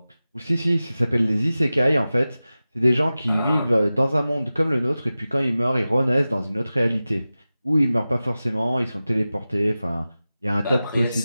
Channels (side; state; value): both; inverted; correlation -0.95